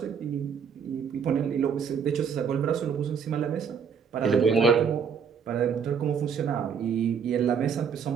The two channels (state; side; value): quieter; left; 6.7 dB